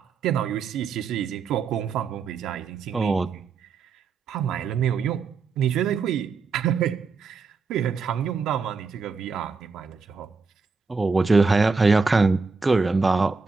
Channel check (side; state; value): left; quieter; 4.7 dB